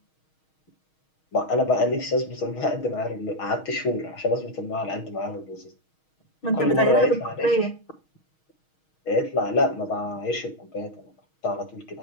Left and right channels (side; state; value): right; late; 6.3 ms